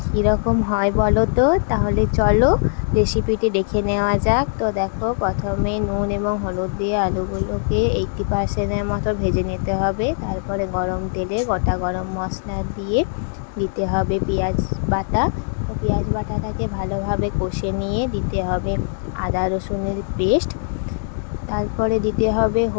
কীরকম হয় বলো তো। তাহলে চলো রেসিপিটি দেখে নেওয়া যাক। তো দেখো, প্রথমে নুন এবং হলুদ দিয়ে আলুগুলোকে 80% মতো ভেজে নিতে হবে। তারপরে গরম তেলে গোটা গরম মশলা দিয়ে দিতে হবে পেঁয়াজ বাটা। তো পেঁয়াজ বাটাটাকে ভালোভাবে কষে নিয়ে দিতে হবে আদা রসুনের পেস্ট। তারপরে দিতে হবে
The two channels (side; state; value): right; silent; 60 dB below the other